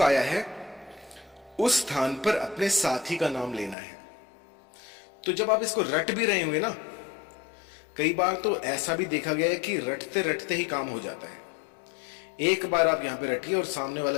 आया है उस स्थान पर अपने साथी का नाम लेना है। तो जब आप इसको रट भी रहे होंगे ना, कई बार तो ऐसा भी देखा गया है कि रटते रटते ही काम हो जाता है। एक बार आप यहां पे रटिए और सामने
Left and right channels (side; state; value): right; drops out; at 3.8 s